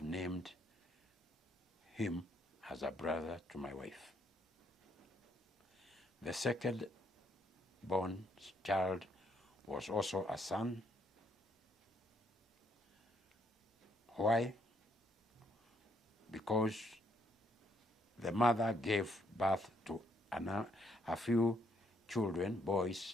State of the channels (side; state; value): both; normal; correlation 0.71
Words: named him as a brother to my wife. The second born child was also a son. Why? Because the mother gave birth to a few children,